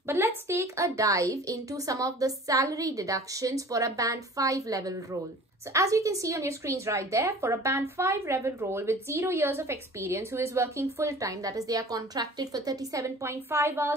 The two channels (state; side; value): normal; both; correlation 0.44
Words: But let's take a dive into some of the salary deductions for a band 5 level role. So as you can see on your screens right there, for a band 5 level role with 0 years of experience who is working full-time, that is they are contracted for 37.5